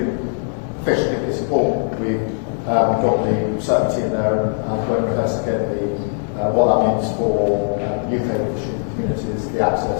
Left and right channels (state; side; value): silent; right; 66 dB below the other